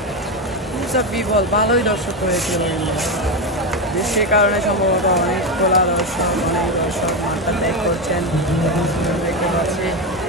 বিবল ভালোই দর্শক হয়েছিল, কিন্তু বৃষ্টির কারণে সম্ভবত অনেক খোলা দর্শক, অনেক দর্শক মাঠটা ত্যাগ করছেন দেখতে পাচ্ছি।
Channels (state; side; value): normal; both; correlation 0.12